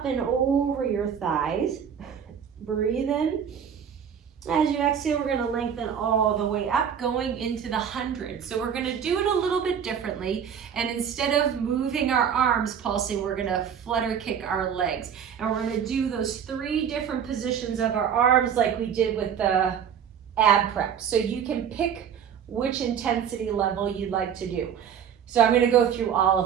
and over your thighs. Breathe in. As you exhale, we're gonna lengthen all the way up, going into the 100. So we're gonna do it a little bit differently. And instead of moving our arms pulsing, we're gonna flutter kick our legs. And we're gonna do those 3 different positions of our arms like we did with the ab prep. So you can pick which intensity level you'd like to do. So I'm going to go through all of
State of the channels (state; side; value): quieter; left; 8.0 dB